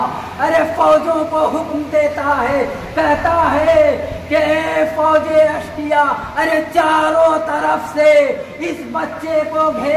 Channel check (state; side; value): identical; both; correlation 1.00